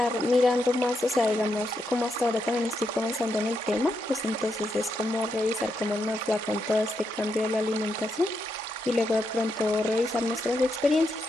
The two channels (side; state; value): both; normal; correlation 0.82